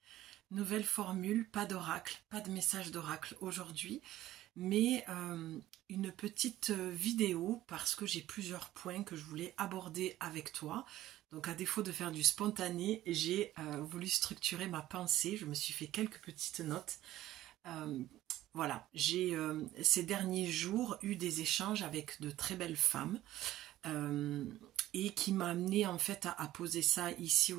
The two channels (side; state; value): left; quieter; 14.6 dB